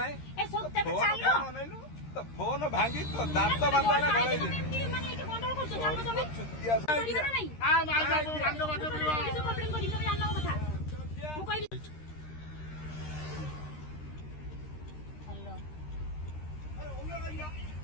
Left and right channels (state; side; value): late; right; 13 ms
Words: तो फोन भांगी तो दांत बांधा गले